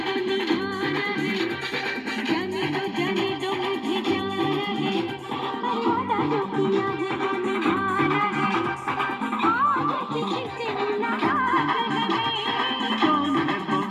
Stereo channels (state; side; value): identical; both; correlation 1.00